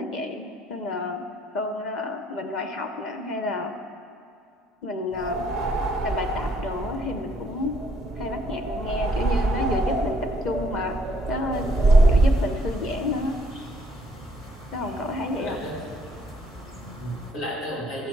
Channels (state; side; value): normal; both; correlation 0.67